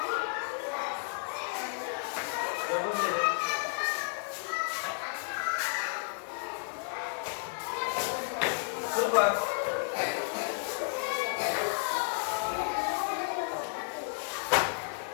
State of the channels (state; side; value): silent; right; 56 dB below the other